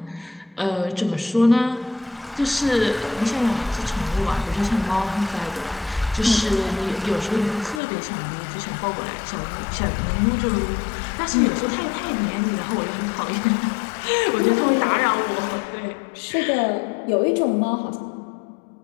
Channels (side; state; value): right; drops out; at 7.8 s